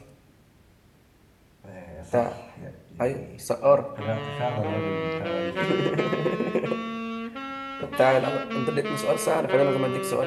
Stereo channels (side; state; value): both; identical; correlation 1.00